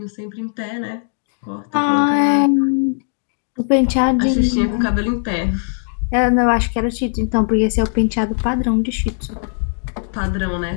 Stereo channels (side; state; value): right; silent; 65 dB below the other